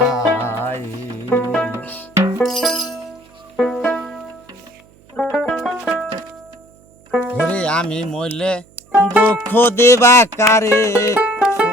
আমি মইলে দুঃখ দেবা কারে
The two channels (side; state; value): right; noise; hum, 29 dB below the sound